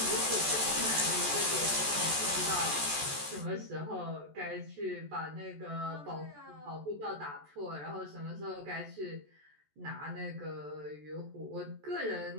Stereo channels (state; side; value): late; left; 14 ms